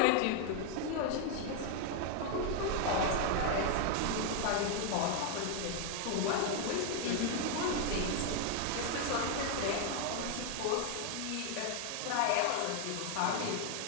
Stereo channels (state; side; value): different; both; correlation 0.01